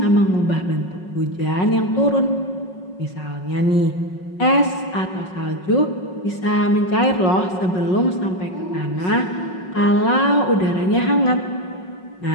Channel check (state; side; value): late; right; 5.5 ms